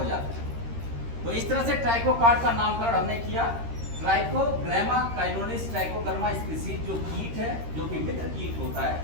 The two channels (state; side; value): late; left; 13 ms